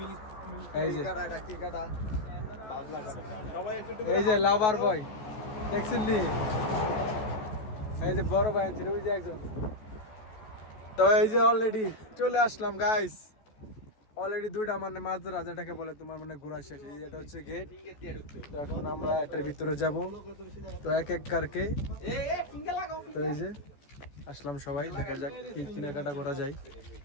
এই যে এই যে লাভার বয় দেখছেন নি? এই যে বড় ভাই আনছে ওই যে একজন। তো এই যে অলরেডি চলে আসলাম গাইস। অলরেডি দুইটা মানে মাঝরা যেটাকে বলে তোমার মানে ঘোরা শেষ। এই এটা হচ্ছে গেট। তো এখন আমরা এটার ভিতরে যাব। তো এক এক কারকে তো এই যে আসলাম সবাই, দেখা যাক কি কেনাকাটা করা যায়।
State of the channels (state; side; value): late; right; 14 ms